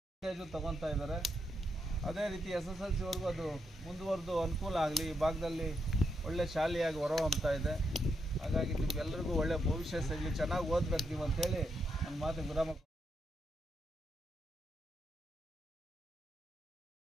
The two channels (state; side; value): normal; both; correlation 0.81